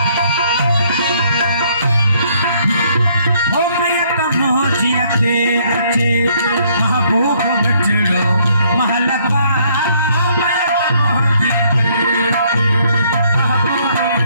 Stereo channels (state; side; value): inverted; both; correlation -0.66